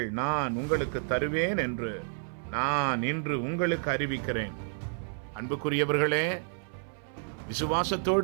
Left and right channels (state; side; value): silent; left; 58 dB below the other